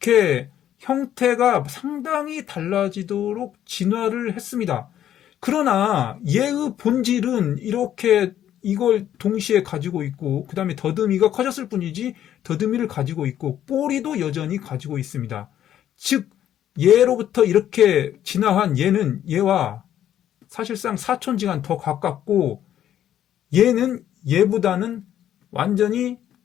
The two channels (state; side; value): quieter; right; 11.0 dB